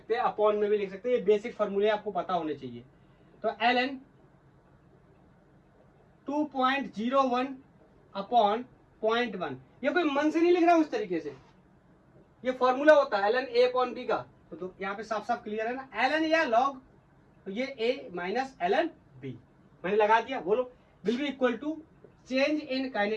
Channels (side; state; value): both; identical; correlation 1.00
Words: हैं, अपॉन में भी लिख सकते हैं, ये बेसिक फॉर्मूले आपको पता होने चाहिए। तो ln 2.01 अपॉन 0.1, ये कोई मन से नहीं लिख रहा हूं इस तरीके से, ये फॉर्मूला होता है ln a अपॉन b का। तो यहाँ पे साफ साफ क्लियर है ना, ln या log, तो ये a माइनस ln b मैंने लगा दिया। बोलो, will be equal to change in